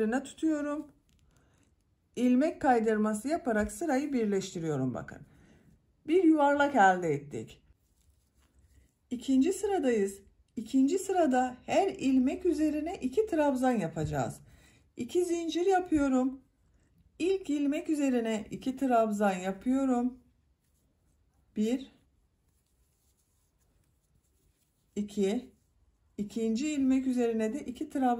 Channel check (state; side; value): identical; both; correlation 1.00